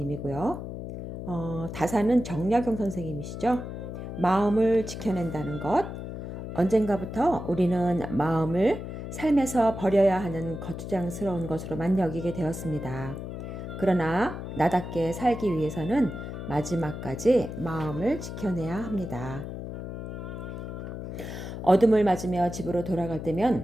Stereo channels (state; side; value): noise; left; hum, 8 dB below the sound